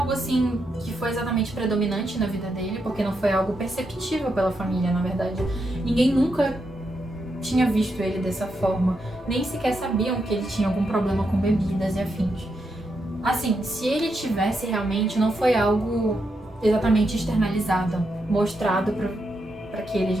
assim que foi exatamente predominante na vida dele, porque não foi algo perceptível pela família, na verdade. Ninguém nunca tinha visto ele dessa forma, nem sequer sabiam que ele tinha algum problema com bebidas e afins. Assim, se ele tivesse realmente, não foi algo exatamente externalizado, mostrado para aqueles,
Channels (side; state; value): both; normal; correlation 0.83